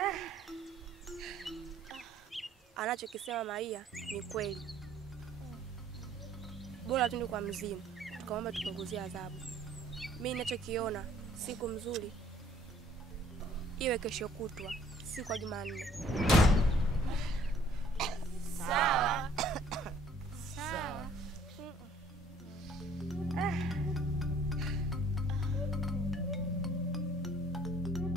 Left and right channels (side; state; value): both; normal; correlation 0.58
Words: Anachokisema Maia ni kweli. Bora tunde kwa mzimu tukamwomba tupunguzie adhabu. Mimi ninachokiona siku mzuri iwe kesho kutwa, siku ya Jumanne. Sawa. Sawa.